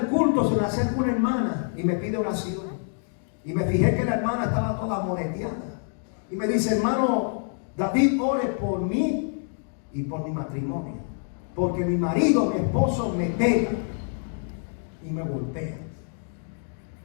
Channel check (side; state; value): right; silent; 60 dB below the other